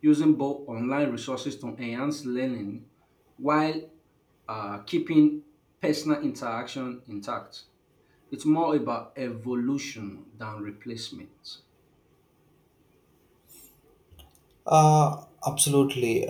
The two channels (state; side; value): identical; both; correlation 1.00